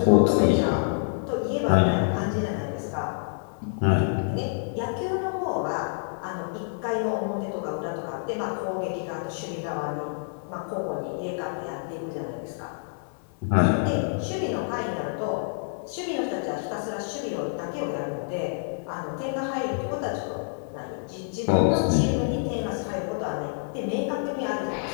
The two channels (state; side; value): silent; right; digital silence